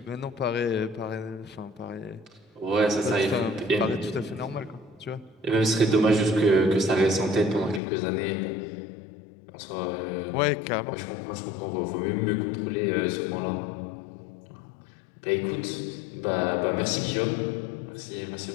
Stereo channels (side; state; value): right; drops out; at 7.8 s